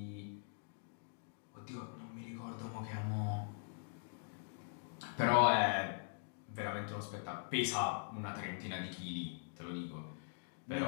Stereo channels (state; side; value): silent; right; digital silence